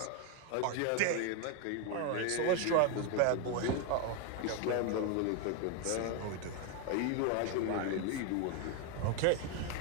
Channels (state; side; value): different; both; correlation 0.01